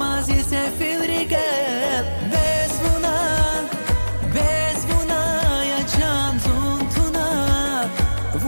ise filrikel Bezvuna Yacan zuntuna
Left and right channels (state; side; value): inverted; both; correlation -1.00